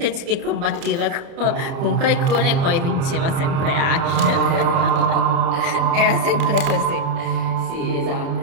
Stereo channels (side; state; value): left; late; 30 ms